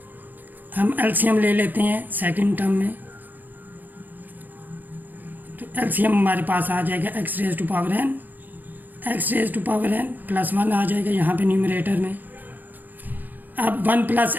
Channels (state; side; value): late; left; 0.086 ms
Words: हम एलसीएम ले लेते हैं सेकंड टर्म में, तो एलसीएम हमारे पास आ जाएगा X raise to power n, x raise to power n plus 1 आ जाएगा यहाँ पे न्यूमरेटर में। अब 1 plus